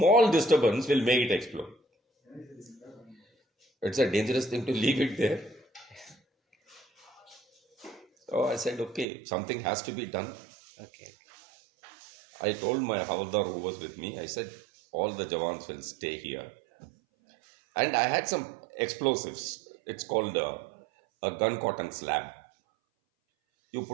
disturbance will make it explode. It's a dangerous thing to leave it there. So I said, okay, something has to be done. Okay I told my Havaldar who was with me, I said, all the Jawans will stay here. And I had some explosives. It's called a gun cotton slab. You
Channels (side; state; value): left; drops out; at 9.1 s